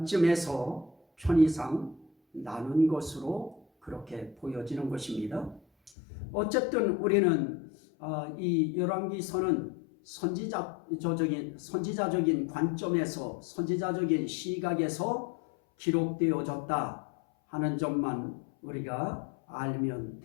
편의상 나눈 것으로 그렇게 보여지는 것입니다. 어쨌든 우리는 이 열왕기서는 선지자적인 관점에서, 선지자적인 시각에서 기록되어졌다 하는 점만 우리가 알면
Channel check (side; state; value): right; drops out; at 5.9 s